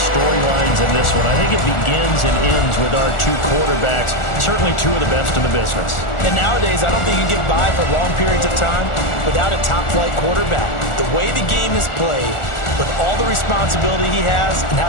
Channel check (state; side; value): late; right; 1.4 ms